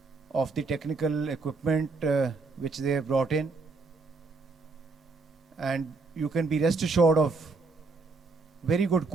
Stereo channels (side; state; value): left; quieter; 4.0 dB